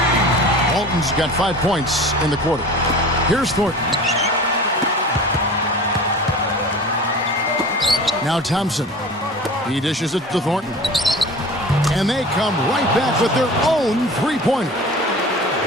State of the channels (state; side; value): normal; both; correlation 0.38